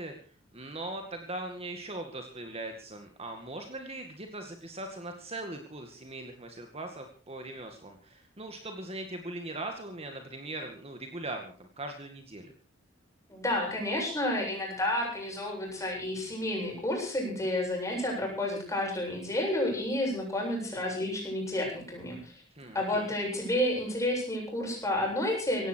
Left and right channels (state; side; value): normal; both; correlation 0.34